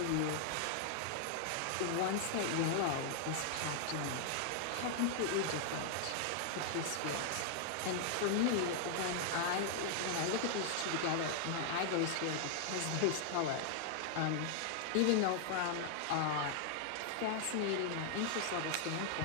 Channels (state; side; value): different; both; correlation 0.00